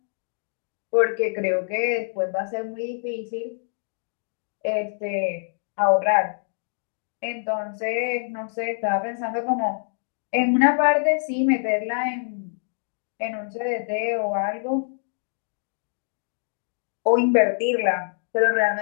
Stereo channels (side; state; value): right; silent; digital silence